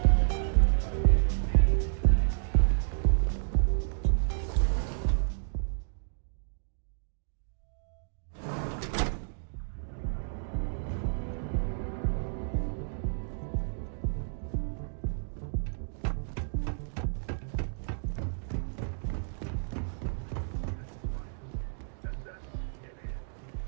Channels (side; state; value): left; silent; digital silence